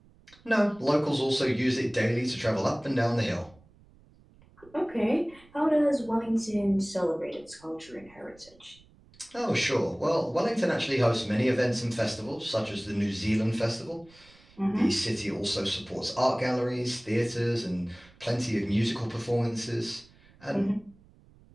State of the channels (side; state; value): right; noise; rumble, 27 dB below the sound